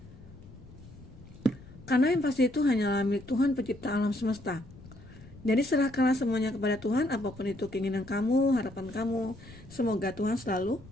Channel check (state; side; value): noise; left; rumble, 19 dB below the sound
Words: Karena yang pasti itu hanyalah milik Tuhan pencipta alam semesta. Jadi serahkanlah semuanya kepada Tuhan, apapun itu keinginan kamu, harapan kamu. Semoga Tuhan selalu